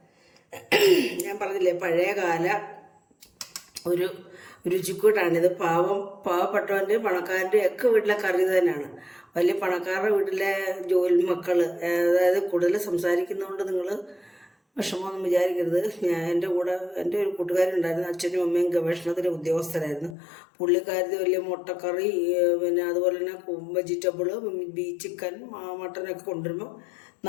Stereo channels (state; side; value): drops out; right; at 20.2 s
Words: ഞാൻ പറഞ്ഞില്ലേ, പഴയകാല ഒരു രുചിക്കൂട്ടാണിത്. പാവപ്പെട്ടവൻ്റെ പണക്കാരൻ്റെ ഒക്കെ വീട്ടിലെ കറി തന്നെയാണ്. വലിയ പണക്കാരുടെ വീട്ടിലെ ജോലി മക്കൾ, അതായത് കൂടുതൽ സംസാരിക്കുന്നതുകൊണ്ട് നിങ്ങൾ വിഷമമൊന്നും വിചാരിക്കരുത്. എൻ്റെ കൂടെ എൻ്റെ ഒരു കൂട്ടുകാരുണ്ടായിരുന്നു, അച്ഛനും അമ്മയും ഗവേഷണത്തിൻ്റെ ഉദ്യോഗസ്ഥരായിരുന്നു. പുള്ളിക്കാരത്തി വലിയ മുട്ടക്കറി, പിന്നെ അതുപോലെ തന്നെ വെജിറ്റബിള്, ചിക്കൻ, മട്ടനൊക്കെ കൊണ്ടുവരുമ്പോൾ